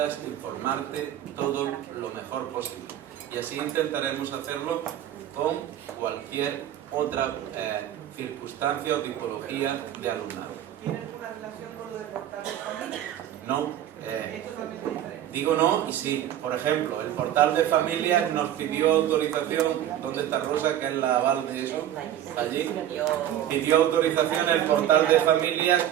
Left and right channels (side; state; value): left; quieter; 11.4 dB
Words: informarte todo lo mejor posible. Y así intentaremos hacerlo con cualquier otra circunstancia o tipología de alumnado. ¿Tiene alguna relación con lo de portal de familia? No. Es totalmente diferente. Digo no y sí. Por ejemplo, el portal de familias nos pidió autorización. ¿Dónde está Rosa, que es la aval de eso? Allí. Pidió autorización el portal de familias